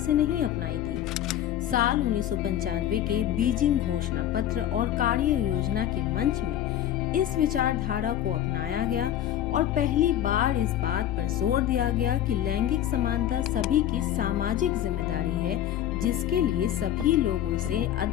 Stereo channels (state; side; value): quieter; right; 11.5 dB